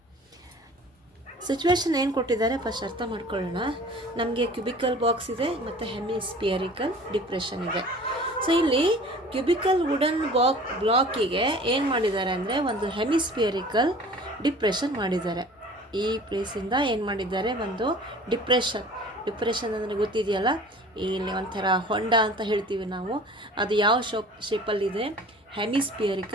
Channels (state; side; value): normal; both; correlation 0.45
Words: Situation ಏನು ಕೊಟ್ಟಿದ್ದಾರೆ first ಅರ್ಥ ಮಾಡ್ಕೊಳ್ಳೋಣ. ನಮಗೆ cubical box ಇದೆ ಮತ್ತು ಹೆಮಿಸ್ಪಿಯರಿಕಲ್ depression ಇದೆ. So ಇಲ್ಲಿ cubical wooden ಬ್ಲಾಕಿಗೆ ಏನು ಮಾಡಿದ್ದಾರೆ ಅಂದರೆ ಒಂದು ಹೆಮಿಸ್ಪಿಯರಿಕಲ್ ಡಿಪ್ರೆಷನ್ ಮಾಡಿದ್ದಾರೆ. ಈ ಪ್ಲೇಸಿಂದ ಏನು ಮಾಡಿದ್ದಾರೆ, ಒಂದು ಡಿಪ್ರೆಷನ್ ಅಂದರೆ ಗೊತ್ತಿದೆಯಲ್ಲ, ಇಲ್ಲಿ ಒಂಥರ ಹೊಂಡ ಅಂತ ಹೇಳ್ತೀವಿ ನಾವು, ಅದು ಯಾವ ಶೇಪಲ್ಲಿದೆ,